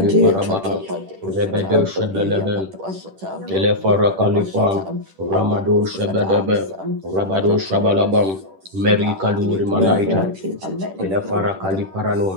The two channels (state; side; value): late; left; 10 ms